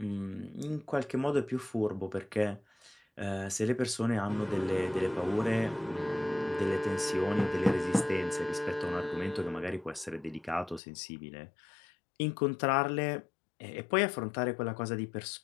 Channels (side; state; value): right; drops out; at 10.8 s